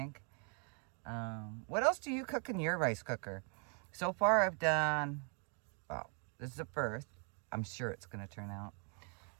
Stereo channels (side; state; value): left; quieter; 39.8 dB